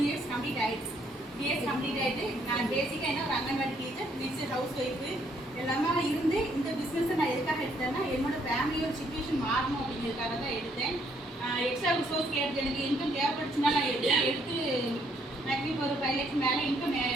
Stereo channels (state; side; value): normal; both; correlation 0.69